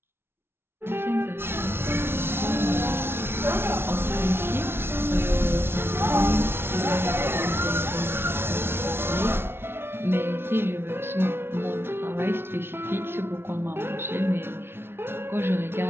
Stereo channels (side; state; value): left; late; 0.12 ms